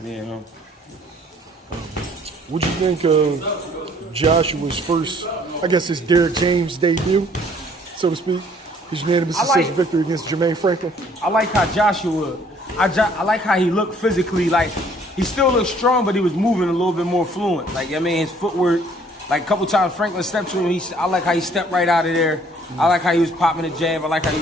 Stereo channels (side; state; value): both; normal; correlation 0.60